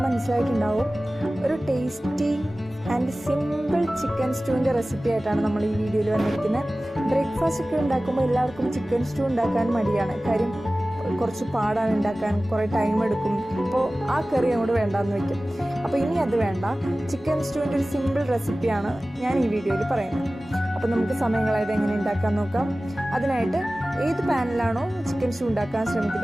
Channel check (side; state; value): both; normal; correlation 0.97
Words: മനസ്സിലായിട്ടുണ്ടാവും, ഒരു ടേസ്റ്റി ആൻഡ് സിമ്പിൾ ചിക്കൻ സ്റ്റൂവിൻ്റെ റെസിപ്പി ആയിട്ടാണ് നമ്മൾ ഈ വീഡിയോയിൽ വന്നിരിക്കുന്നത്. ബ്രേക്ക്ഫാസ്റ്റ് ഒക്കെ ഉണ്ടാക്കുമ്പോൾ എല്ലാവർക്കും ചിക്കൻ സ്റ്റൂ ഉണ്ടാക്കാൻ മടിയാണ്. കാര്യം കുറച്ച് പാടാണ് ഉണ്ടാക്കാൻ, കുറേ ടൈം എടുക്കും. അപ്പോൾ ആ കറി അങ്ങോട്ട് വേണ്ടാന്ന് വെക്കും. അപ്പോൾ ഇനി അത് വേണ്ട, ചിക്കൻ സ്റ്റൂവിൻ്റെ ഒരു സിമ്പിൾ റെസിപ്പിയാണ് ഞാൻ ഈ വീഡിയോയിൽ പറയുന്നത്. അപ്പോൾ നമുക്ക് സമയം കളയാതെ എങ്ങനെ ഉണ്ടാക്കാൻ നോക്കാം. അതിനായിട്ട് ഏത് പാനിലാണോ ചിക്കൻ സ്റ്റൂ ഉണ്ടാക്കാൻ